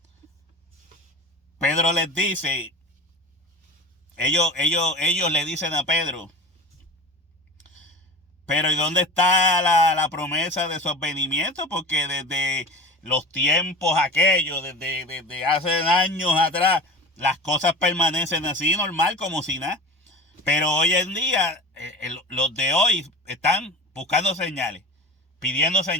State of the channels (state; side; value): normal; both; correlation 0.34